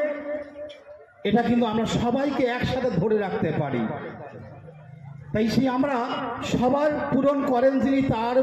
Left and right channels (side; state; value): both; identical; correlation 1.00